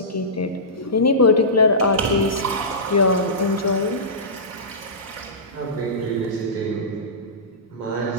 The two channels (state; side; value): normal; both; correlation -0.20